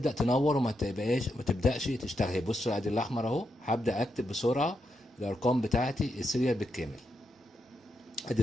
تنور وما تبقاش ما تبداش تشتغل. بصوا ادي الاحمر اهو، هبدا اكتب بسرعه الارقام بتاعتي السيريال بالكامل. ادي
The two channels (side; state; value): both; normal; correlation 0.83